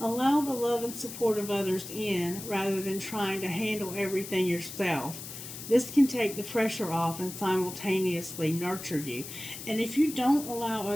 Allow the love and support of others in rather than trying to handle everything yourself. This can take the pressure off and simultaneously nurture you. And if you don't allow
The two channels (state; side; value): noise; left; hiss, 11 dB below the sound